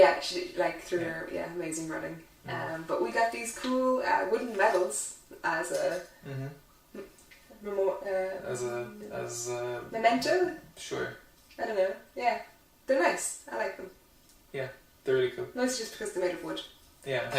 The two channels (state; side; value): identical; both; correlation 1.00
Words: she through her amazing running. But we got these cool wooden medals as a as a memento. Sure. I don't know. Yeah, they're nice. I like them. Yeah, they're really cool. Mostly just because they're made of wood. Yeah,